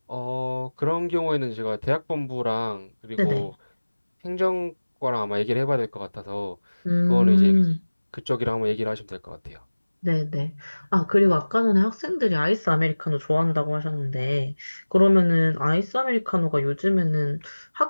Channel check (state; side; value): inverted; both; correlation -1.00